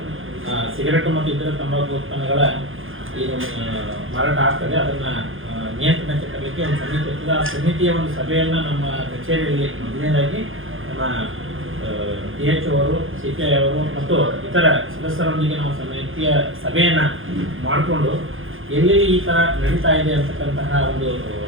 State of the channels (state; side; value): late; left; 0.59 ms